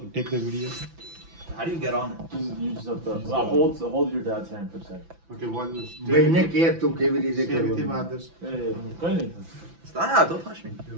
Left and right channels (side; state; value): left; late; 6.0 ms